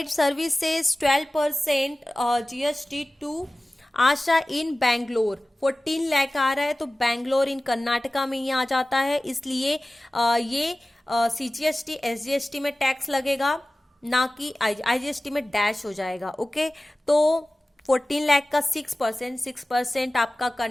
services 12% GST to Asha in Bangalore. 14 lakh आ रहा है तो बैंगलोर इन कर्नाटका में ही आ जाता है, इसलिए ये सीजीएसटी एसजीएसटी में टैक्स लगेगा ना कि आईजीएसटी में डैश हो जाएगा। ओके, तो 14 लाख का 6% आपका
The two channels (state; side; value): normal; both; correlation 0.97